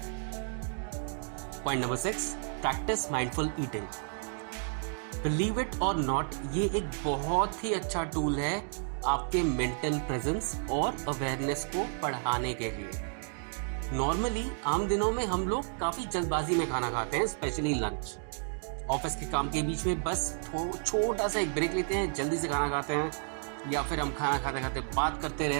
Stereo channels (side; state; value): left; silent; 57 dB below the other